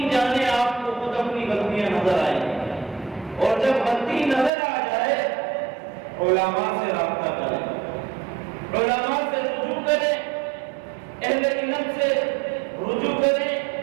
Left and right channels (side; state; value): left; drops out; at 4.5 s